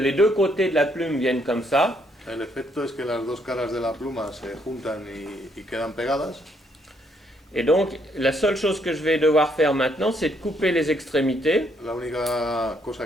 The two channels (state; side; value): normal; both; correlation 0.71